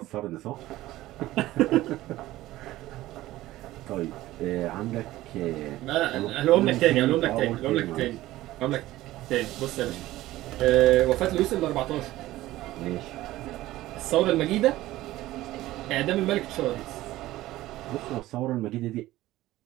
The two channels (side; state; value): left; quieter; 16.3 dB